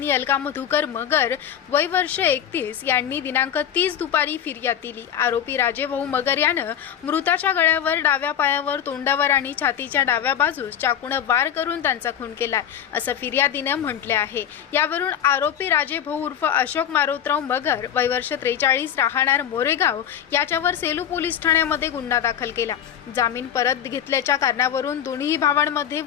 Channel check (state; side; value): quieter; right; 9.6 dB